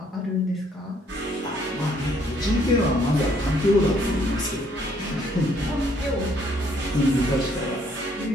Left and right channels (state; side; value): normal; both; correlation 0.66